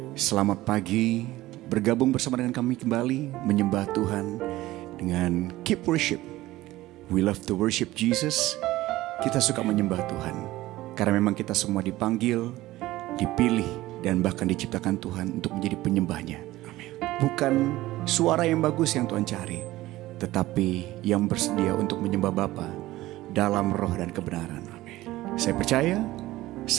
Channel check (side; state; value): left; quieter; 17.1 dB